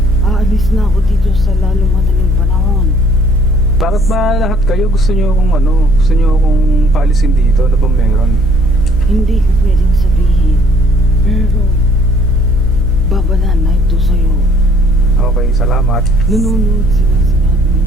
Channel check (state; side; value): noise; right; hum, 7 dB below the sound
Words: aalis na ako dito sa lalo madaling panahon. Bakit ba lahat kayo gusto nyo akong paalisin dito? Ano ba meron? Hindi ko pwedeng sabihin. Pero, babala na ito sa'yo. Okay, salamat. Nanonood sila sa lahat